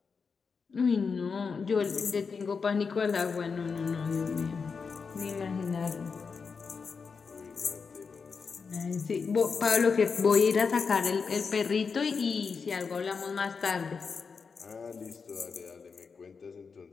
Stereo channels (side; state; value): right; quieter; 5.3 dB